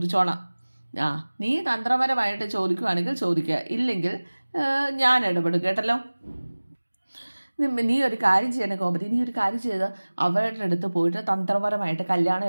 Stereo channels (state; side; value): inverted; both; correlation -1.00